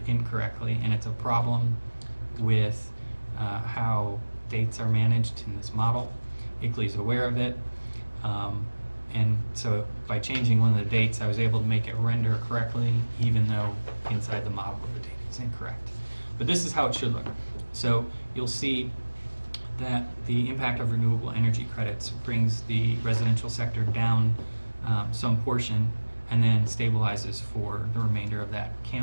incorrectly, and it's a problem with how dates are managed in this model. ICLEI's aware of it, and so by changing one of the dates, I was able to make it render correctly, even though inside the model the data is incorrect. But this is how it should look. So you'll see that the impact of renewable energy credits brings the residential sector down some portion and then stabilizes for the remainder of that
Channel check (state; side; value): inverted; both; correlation -1.00